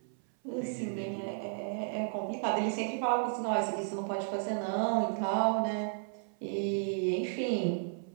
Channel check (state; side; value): silent; left; 56 dB below the other